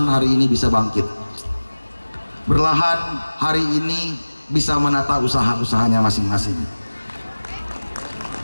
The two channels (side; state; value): both; inverted; correlation -1.00